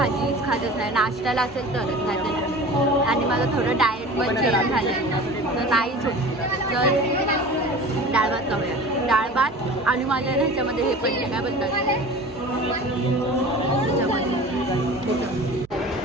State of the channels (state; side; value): noise; right; hum, 27 dB below the sound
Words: खातच नाही. नाश्त्याला असेल तरच, नाही तर नाही. आणि माझं थोडं डाएट पण चेंज झालं आहे तर नाहीच होत. तर डाळ भात खाऊया, डाळ भात. आणि माझ्या ह्याच्यामध्ये हे पडले काय बोलतात